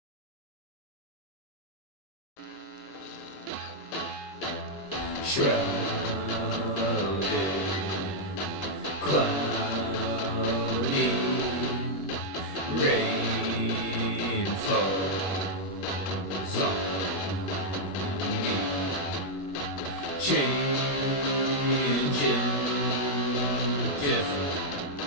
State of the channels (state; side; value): late; right; 21 ms